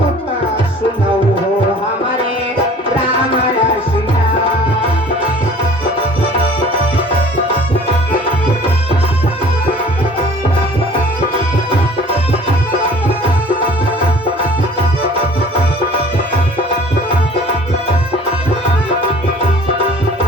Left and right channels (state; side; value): normal; both; correlation 0.49